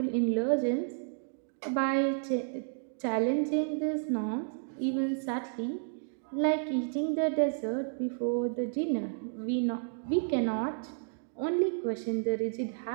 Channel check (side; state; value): left; silent; digital silence